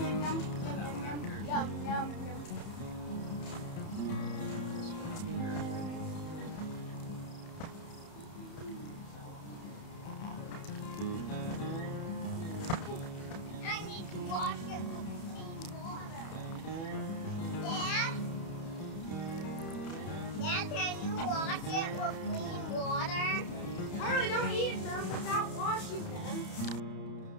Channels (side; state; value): right; late; 31 ms